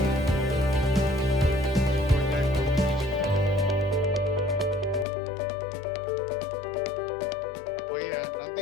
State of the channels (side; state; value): right; drops out; at 5.1 s